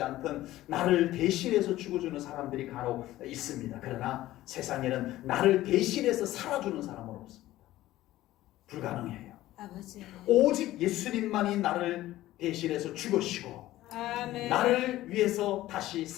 않든 나를 대신해서 죽어주는 사람들이 간혹 있습니다. 그러나 세상에는 나를 대신해서 살아주는 사람은 없습니다. 불가능해요. 아버지. 오직 예수님만이 나를 대신해서 죽으시고 아멘. 나를 위해서 다시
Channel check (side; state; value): right; quieter; 15.5 dB